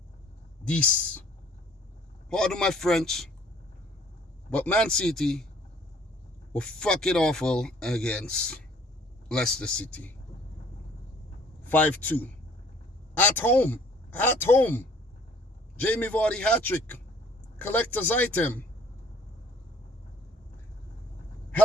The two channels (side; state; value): both; normal; correlation 0.56